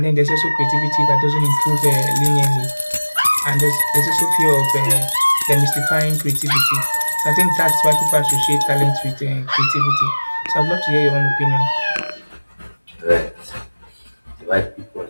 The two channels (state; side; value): inverted; both; correlation -1.00